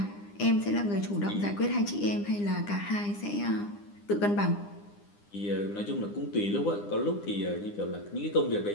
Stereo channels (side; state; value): right; late; 9.9 ms